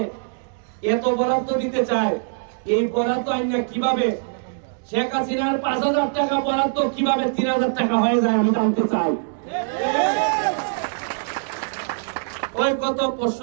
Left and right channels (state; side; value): silent; left; 64 dB below the other